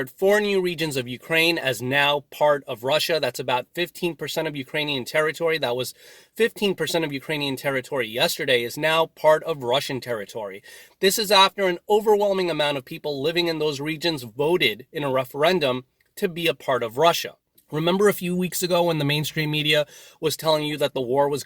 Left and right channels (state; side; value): identical; both; correlation 1.00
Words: 4 new regions of Ukraine as now part of Russia. That's about 15% of Ukrainian territory. That was 15% of Ukrainian territory yesterday is now part of Russian territory. This is after an overwhelming amount of people living in those regions voted in a referendum to be a part of Russia. Remember a few weeks ago when the mainstream media was telling you that the war was